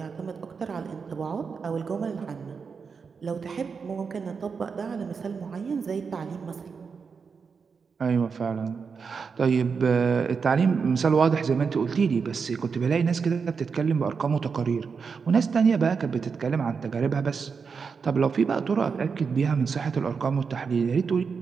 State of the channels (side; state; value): left; quieter; 5.6 dB